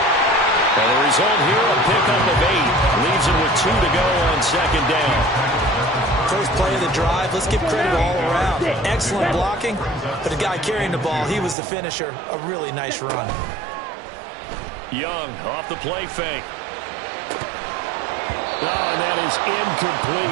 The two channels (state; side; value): drops out; left; at 11.6 s